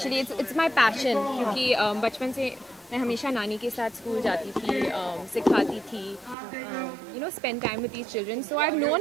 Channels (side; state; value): left; drops out; at 6.4 s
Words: it's my passion, क्योंकि बचपन से मैं हमेशा नानी के साथ स्कूल जाती थी, सिखाती थी, spend time with these children. So I've